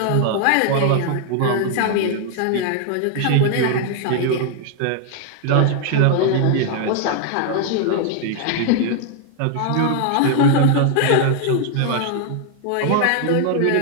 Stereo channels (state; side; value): different; both; correlation 0.00